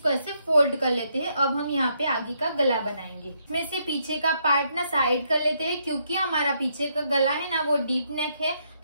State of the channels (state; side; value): inverted; both; correlation -0.75